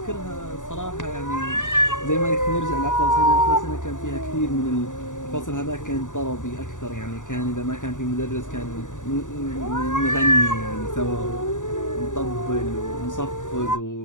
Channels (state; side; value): late; right; 0.87 ms